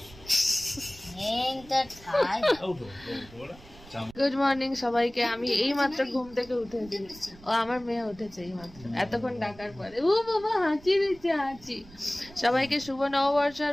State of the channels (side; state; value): right; noise; rumble, 21 dB below the sound